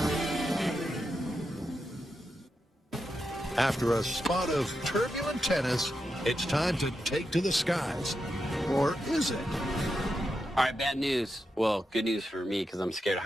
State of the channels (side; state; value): both; normal; correlation 0.87